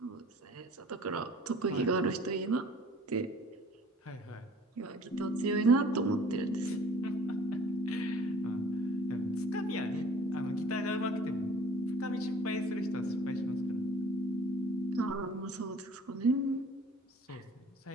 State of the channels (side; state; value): both; normal; correlation 0.51